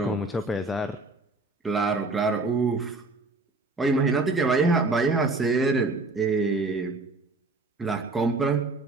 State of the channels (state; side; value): quieter; left; 3.3 dB